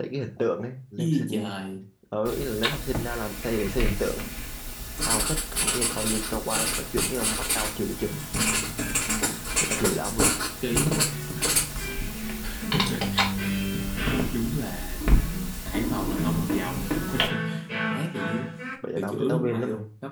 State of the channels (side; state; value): both; identical; correlation 1.00